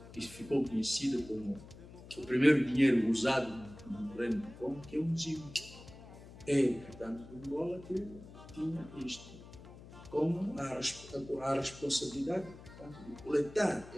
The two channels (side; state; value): left; noise; hum, 17 dB below the sound